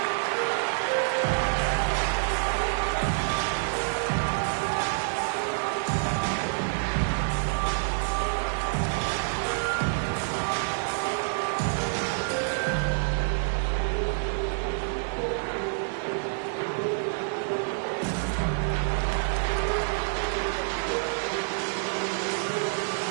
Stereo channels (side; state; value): left; silent; digital silence